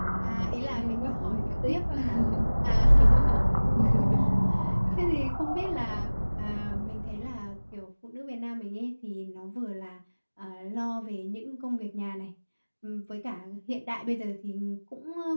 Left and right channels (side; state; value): both; inverted; correlation -1.00